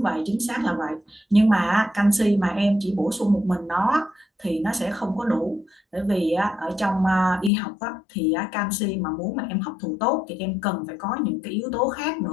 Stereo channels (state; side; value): drops out; right; at 7.5 s